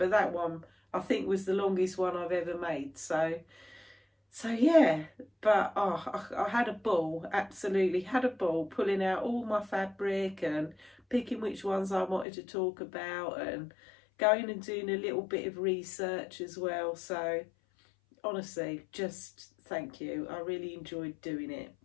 that one I think was the longest one I've ever made. So yeah, but I had a ball, absolutely had a ball, pulling out all my fabric and picking which ones I wanted to talk about, and going and doing a little bit of research as well. So honestly, just thank you. I really enjoyed doing it.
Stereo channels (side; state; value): right; drops out; at 12.2 s